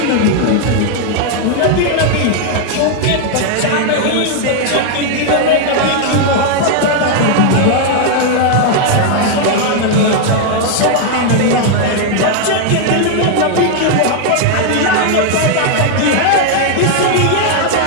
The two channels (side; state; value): both; different; correlation 0.00